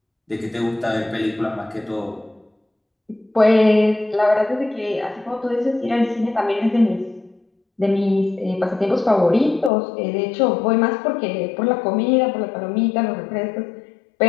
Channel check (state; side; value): drops out; right; at 9.7 s